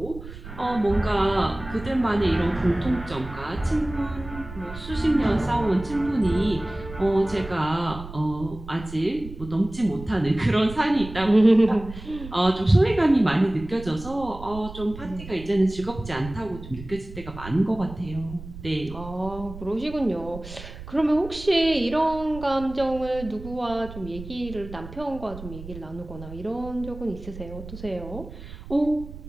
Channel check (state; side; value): noise; right; rumble, 13 dB below the sound